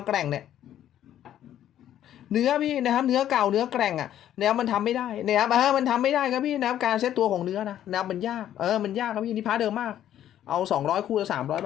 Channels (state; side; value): quieter; right; 11.3 dB